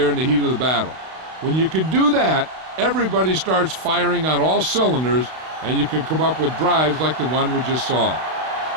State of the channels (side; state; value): left; late; 32 ms